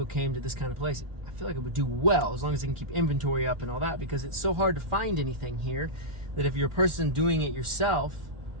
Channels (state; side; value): late; left; 1.4 ms